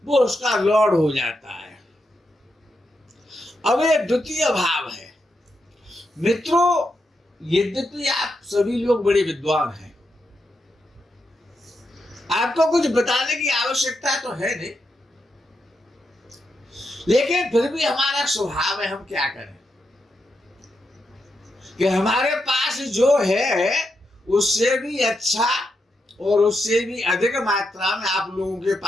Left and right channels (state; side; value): normal; both; correlation 0.84